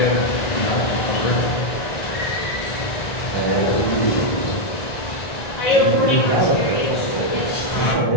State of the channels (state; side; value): late; right; 2.0 ms